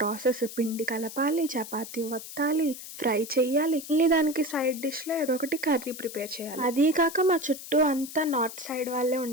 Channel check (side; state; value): left; noise; hiss, 12 dB below the sound